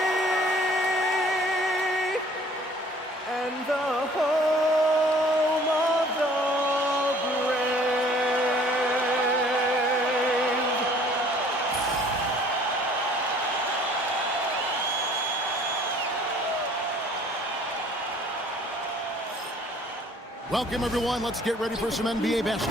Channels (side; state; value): both; normal; correlation 0.55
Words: and the home of the brave? Welcome, everyone. Let's get ready for some NBA